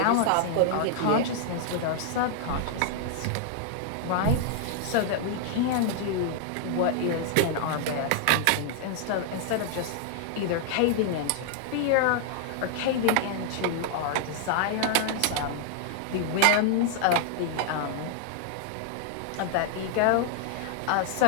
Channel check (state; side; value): different; both; correlation 0.00